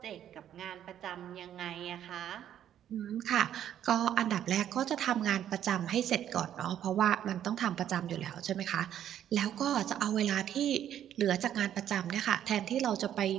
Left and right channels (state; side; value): quieter; left; 10.5 dB